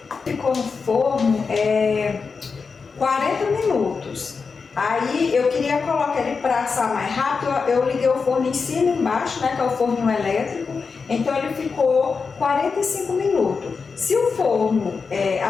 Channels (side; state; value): right; quieter; 5.0 dB